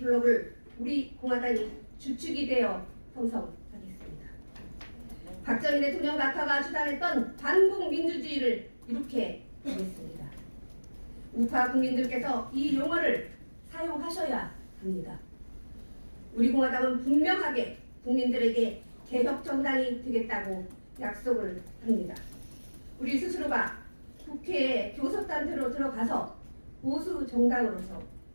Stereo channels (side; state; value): both; inverted; correlation -1.00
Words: 블록을 우리 공화당이 주축이 되어 형성하겠습니다. 박정희 대통령 낙하가 주장했던 반국민주주의를 이렇게 하겠습니다. 우파 국민들께서 이 용어를 사용하셔야 합니다. 우리 공화당은 분명하게 국민들에게 개혁 정당이 되겠다고 약속을 합니다. 우리 스스로가 국회에 교섭단체로 들어가서 보수 정당으로서